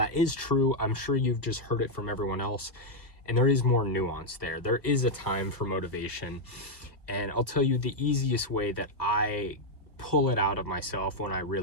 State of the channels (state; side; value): late; right; 1.2 ms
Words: is true, I'm sure you've just heard it from everyone else, and there is more nuance there. There is a time for motivation, and I'll tell you the easiest way that I pull it out of myself when I